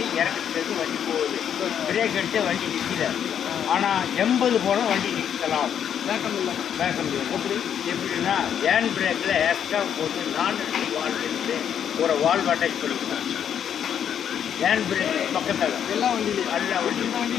இறக்கத்துக்கு வண்டி போகுது. பிரேக் அடித்து வண்டி நிற்கல. ஆனால் 80 போனால் வண்டி நிற்கலாம். வேக்கம் இல்லை. வேக்கம் இல்லை. எப்படின்னா ஹேண்ட் பிரேக்கில் எக்ஸ்ட்ரா போட்டு 4 வால்வ் இருந்து ஒரு வால்வ் அட்டாச் பண்ணிக்கலாம். ஹேண்ட் பிரேக் பக்கத்தில் எல்லா வண்டியிலையும் எல்லா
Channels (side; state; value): right; quieter; 8.9 dB